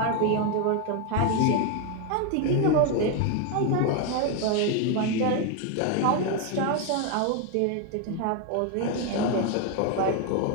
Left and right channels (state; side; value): different; both; correlation 0.01